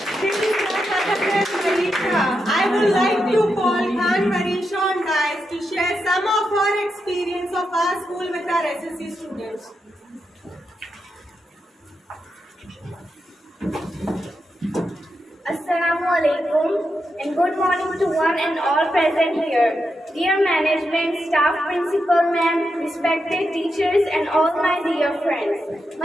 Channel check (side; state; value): both; normal; correlation 0.86